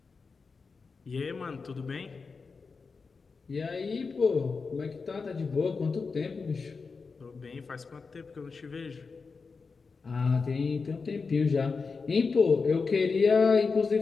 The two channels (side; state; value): right; quieter; 4.7 dB